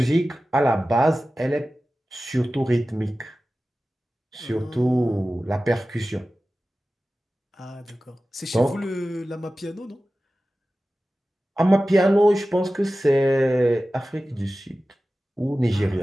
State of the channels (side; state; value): both; normal; correlation 0.95